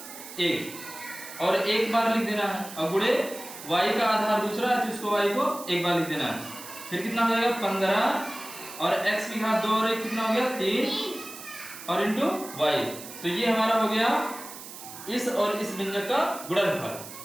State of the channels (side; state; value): right; noise; hiss, 13 dB below the sound